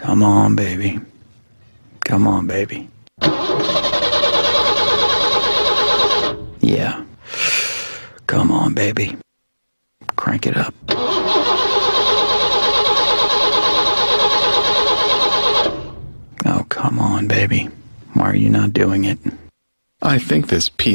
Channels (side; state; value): both; inverted; correlation -1.00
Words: Come on, baby. Come on, baby. Yeah. Come on, baby. Crank it up. Oh, come on, baby. Why are you not doing it? I think this